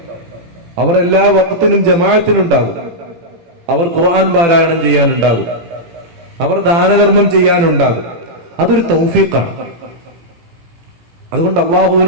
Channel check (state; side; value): late; left; 18 ms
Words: അവർ എല്ലാ വഖത്തിനും ജമാഅത്തിനുണ്ടാകും, അവർ ഖുർആൻ പാരായണം ചെയ്യാനുണ്ടാകും, അവർ ദാനധർമ്മം ചെയ്യാനുണ്ടാകും. അതൊരു തൗഫീഖാണ്. അതുകൊണ്ട്